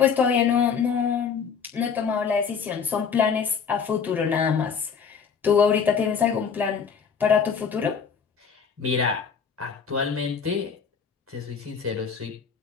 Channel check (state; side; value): quieter; right; 6.5 dB